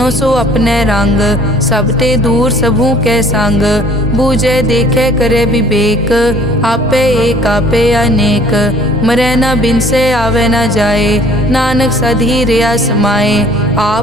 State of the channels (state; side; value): normal; both; correlation 0.54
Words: सो अपने रंग, सब ते दूर सबू के संग, बूझे देखे करे विवेक, आपे एक आपे अनेक, मरे न बिन से आवे न जाए, नानक सधी रिया समाए,